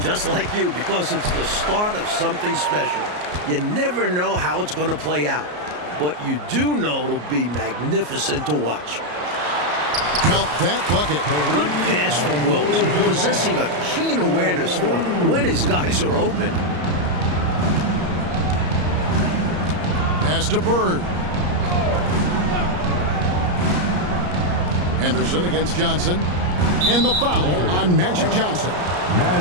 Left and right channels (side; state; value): left; late; 34 ms